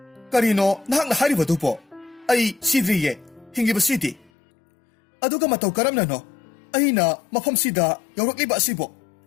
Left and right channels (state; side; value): drops out; right; at 4.3 s